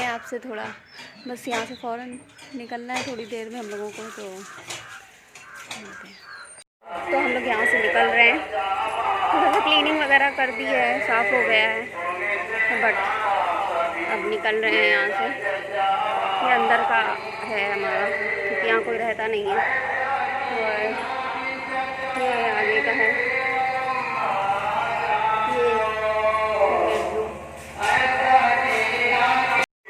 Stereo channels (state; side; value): identical; both; correlation 1.00